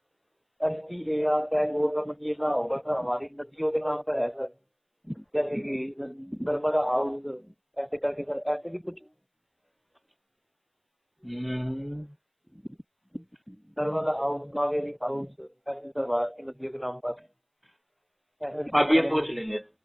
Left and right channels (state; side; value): identical; both; correlation 1.00